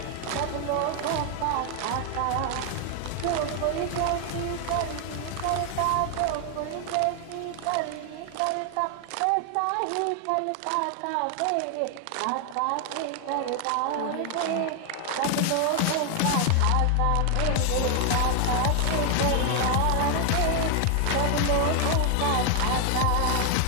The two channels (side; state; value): both; different; correlation 0.00